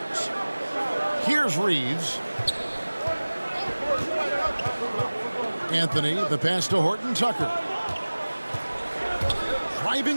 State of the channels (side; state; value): both; inverted; correlation -1.00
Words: Here's Reeves. Anthony, the pass to Horton Tucker.